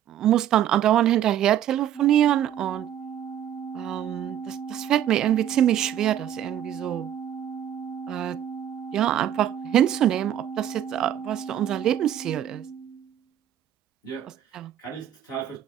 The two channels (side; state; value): left; quieter; 10.8 dB